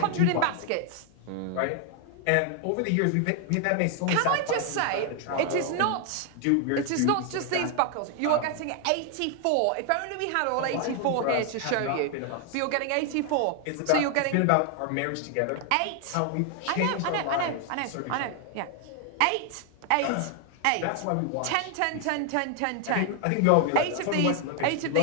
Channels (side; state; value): both; different; correlation 0.00